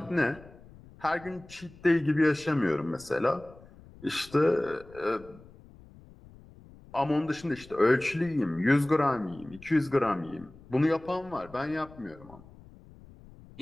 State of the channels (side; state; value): left; noise; rumble, 22 dB below the sound